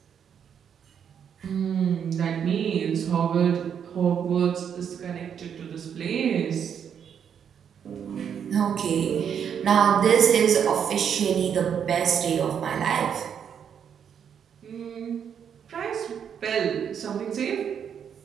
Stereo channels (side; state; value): left; quieter; 8.0 dB